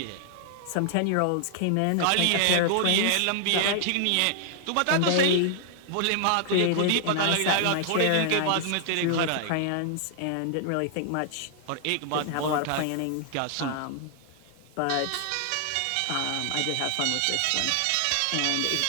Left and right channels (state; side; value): different; both; correlation -0.01